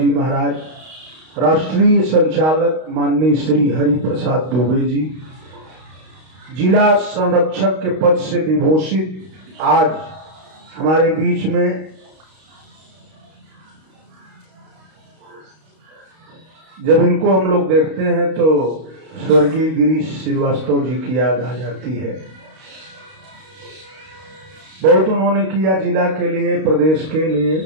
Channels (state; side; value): late; left; 32 ms